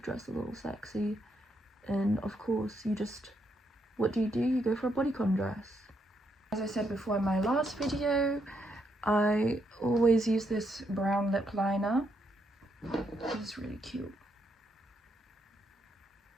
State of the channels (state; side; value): normal; both; correlation 0.77